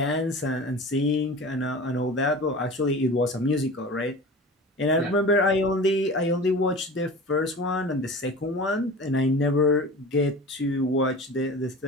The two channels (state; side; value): normal; both; correlation 0.36